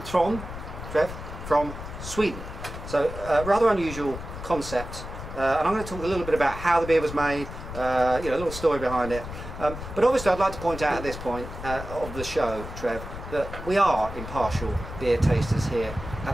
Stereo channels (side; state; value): left; noise; rumble, 10 dB below the sound